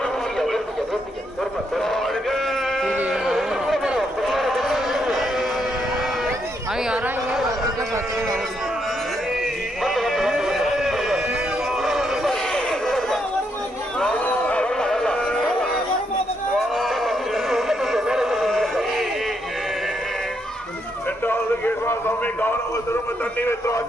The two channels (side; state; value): both; normal; correlation 0.77